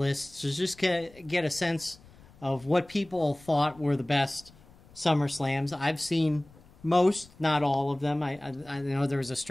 to just get a sense of what people thought were the best SummerSlams. I've seen most, not all of them. I know there was a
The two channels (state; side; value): noise; left; rumble, 25 dB below the sound